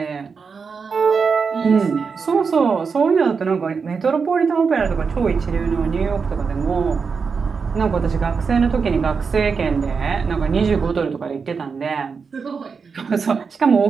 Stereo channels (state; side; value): quieter; left; 5.4 dB